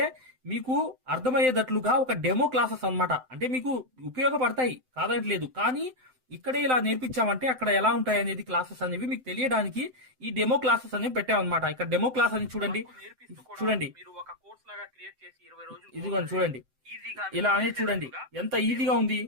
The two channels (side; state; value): left; late; 7.8 ms